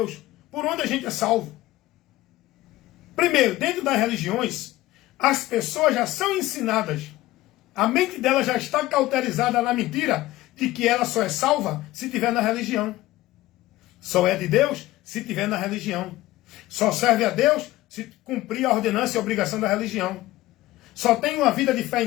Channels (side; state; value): right; quieter; 17.0 dB